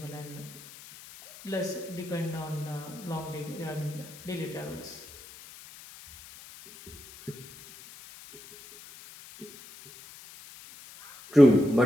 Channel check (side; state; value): left; noise; hiss, 18 dB below the sound